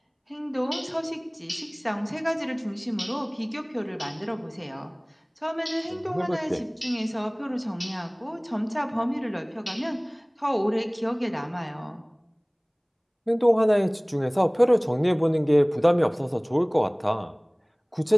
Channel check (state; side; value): identical; both; correlation 1.00